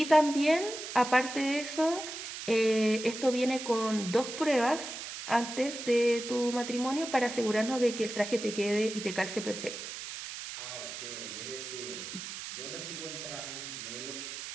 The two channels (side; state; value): right; noise; hiss, 8 dB below the sound